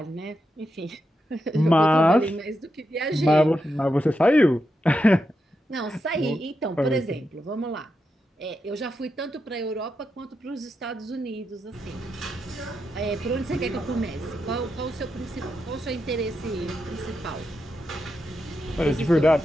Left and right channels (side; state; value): both; normal; correlation 0.86